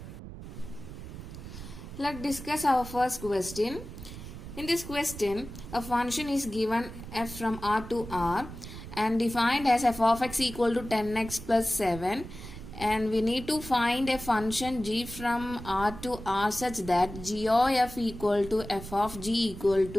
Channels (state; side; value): noise; right; rumble, 12 dB below the sound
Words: Let's discuss our first question. In this question, a function is given f from R to R and defined as f of x equal to 10x plus 7, and we need to find a function g from R to R such that g of f equal to f of g equal